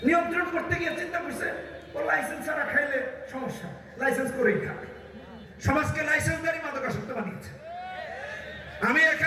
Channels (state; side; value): identical; both; correlation 1.00